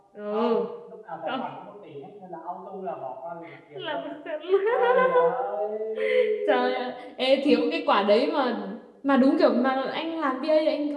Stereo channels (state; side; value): identical; both; correlation 1.00